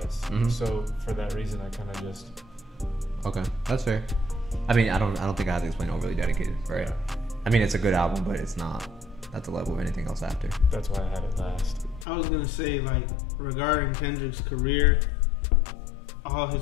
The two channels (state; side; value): drops out; right; at 12.1 s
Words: Mhm. So for that reason, I kind of just Okay, that's fair. I mean, I don't think I have to explain Overly Dedicated, right? Yeah. I mean, it's a good album, but it's not at the level of anything else after. that's why I had it last. I was gonna say like regarding Kendrick's career, all